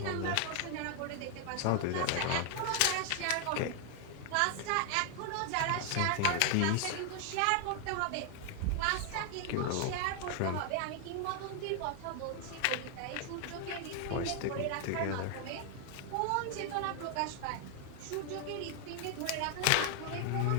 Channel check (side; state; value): both; different; correlation 0.00